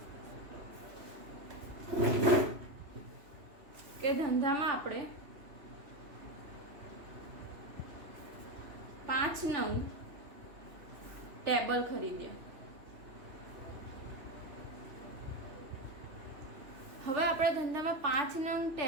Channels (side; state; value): left; late; 3.0 ms